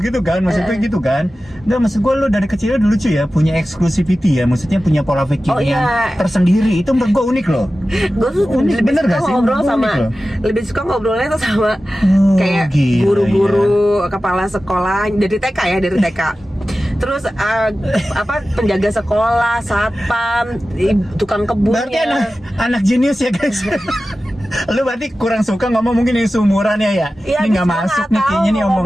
kan. Maksudnya gitu kan. Nggak, maksud gue lo dari kecil udah lucu ya. Punya exclusivity ya. Maksudnya punya pola pikir yang tersendiri. Itu menurut gue unik loh. Gue tuh lebih suka ngobrol sama, lebih suka ngobrolnya tuh sama kayak guru-guru, kepala sekolah dari TK ya, dari TK. Terus penjaga sekolah, satpam, tukang kebunnya. Berarti anak jenius ya guys. Lu berarti kurang suka ngomong mungkin yang seumuran ya? Ini nggak masuk nih kayaknya nih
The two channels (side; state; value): both; normal; correlation 0.95